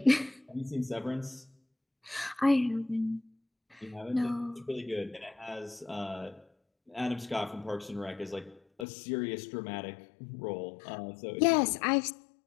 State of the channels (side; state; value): right; drops out; at 8.8 s